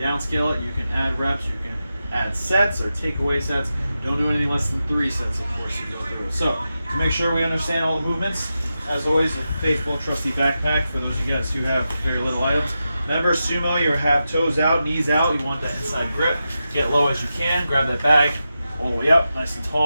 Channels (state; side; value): inverted; both; correlation -0.90